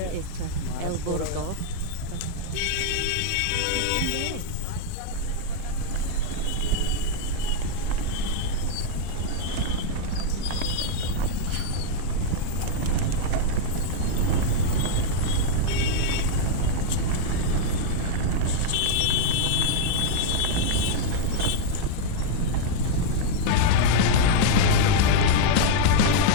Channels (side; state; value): both; different; correlation -0.01